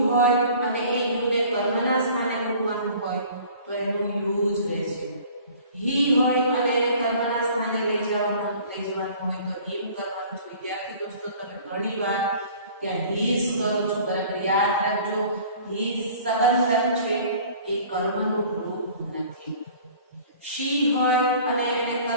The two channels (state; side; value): inverted; both; correlation -0.49